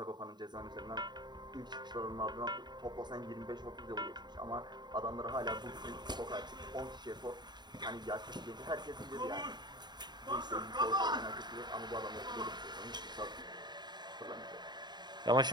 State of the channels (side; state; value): left; late; 0.21 ms